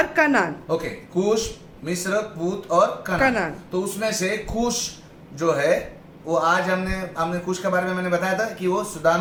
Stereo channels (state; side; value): identical; both; correlation 1.00